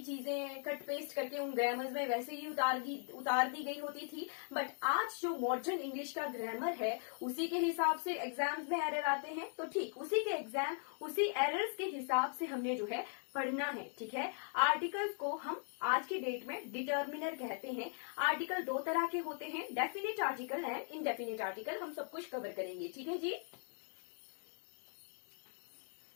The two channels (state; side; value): silent; right; 51 dB below the other